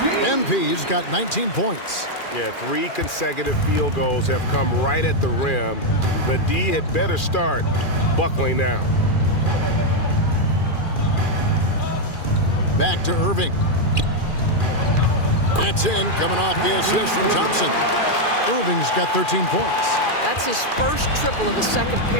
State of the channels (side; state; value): right; late; 2.4 ms